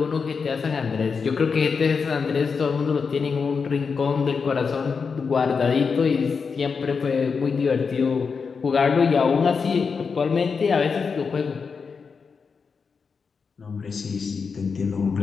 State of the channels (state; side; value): quieter; right; 5.4 dB